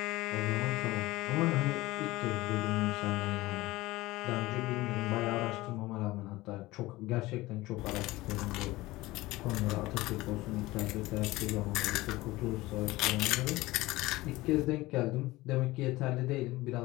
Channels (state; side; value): quieter; right; 19.3 dB